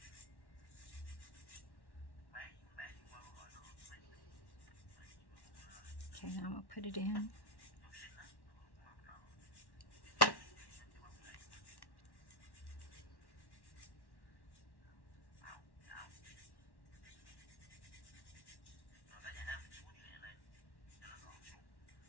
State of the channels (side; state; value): right; late; 1.1 ms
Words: Okay, now I'm gonna put it in.